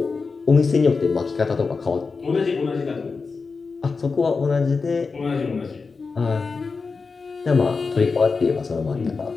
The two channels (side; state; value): right; quieter; 4.6 dB